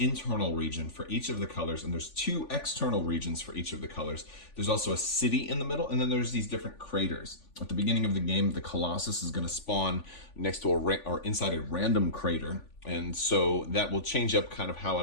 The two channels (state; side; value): late; right; 3.5 ms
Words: region for each of the colors, and there's 2 external regions for each of the colors. There's also a city in the middle, and then there's these different craters. At the beginning of the game, the Colossus is going to spawn next to or inside a random crater. And so that will change up kind of how